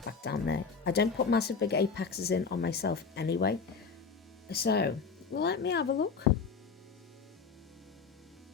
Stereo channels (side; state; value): right; quieter; 5.3 dB